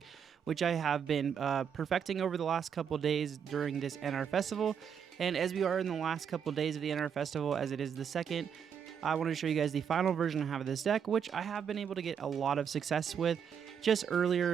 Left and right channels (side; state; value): left; quieter; 7.6 dB